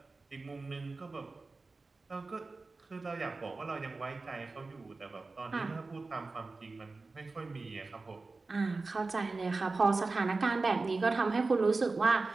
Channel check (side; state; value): left; quieter; 3.7 dB